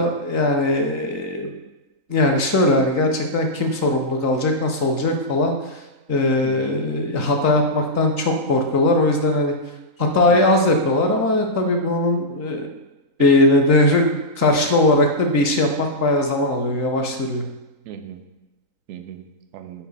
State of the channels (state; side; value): late; left; 3.9 ms